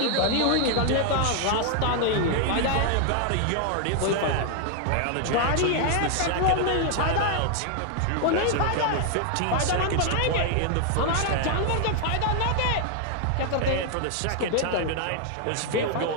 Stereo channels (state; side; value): different; both; correlation 0.00